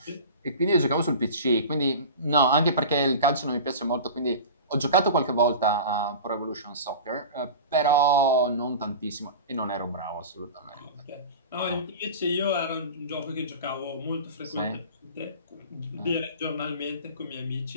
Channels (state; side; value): inverted; both; correlation -0.34